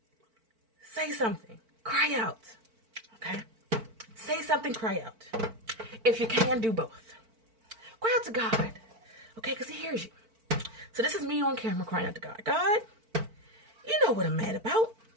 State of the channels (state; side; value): late; left; 4.5 ms